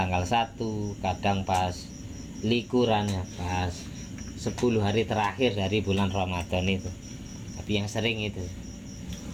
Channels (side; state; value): both; identical; correlation 1.00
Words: 1, kadang pas likurannya, pas 10 hari terakhir dari bulan Ramadan itu. Tapi yang sering itu,